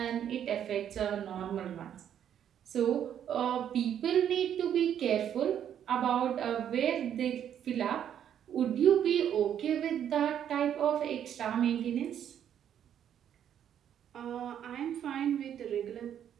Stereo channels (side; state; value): left; quieter; 9.6 dB